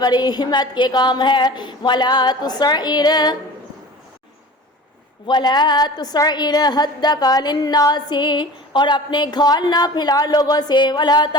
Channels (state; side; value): normal; both; correlation 0.39